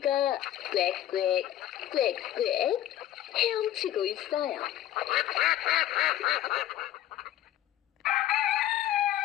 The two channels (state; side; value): quieter; right; 12.7 dB